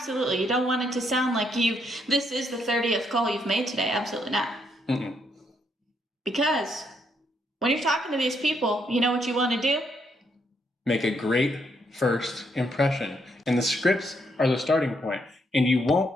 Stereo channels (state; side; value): normal; both; correlation 0.75